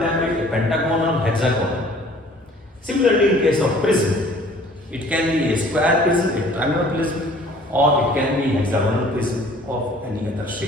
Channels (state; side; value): normal; both; correlation 0.53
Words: a pentagonal, hexagonal. Similarly, in case of prism, it can be a square prism, a triangular prism, or it can be hexagonal prism of any other